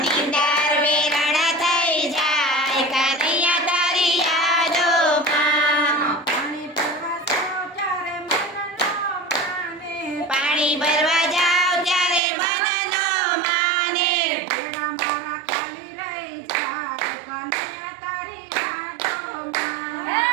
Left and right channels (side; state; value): left; drops out; at 12.2 s